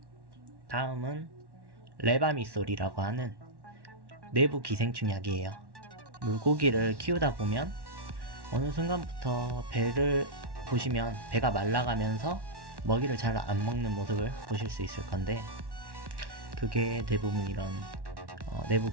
다음은 레바미솔이라고 하는 내부 기생충 약이에요. 물고기를 키우다 보면 어느 순간부터 배를 보시면 배가 말라가면서 먹이를 잘 안 먹는 모습을 보실 수 있을 건데, 그게 대부분 이런 내부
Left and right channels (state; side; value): late; left; 1.1 ms